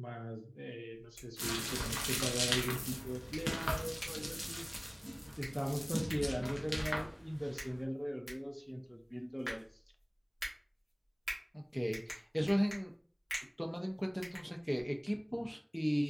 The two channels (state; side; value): identical; both; correlation 1.00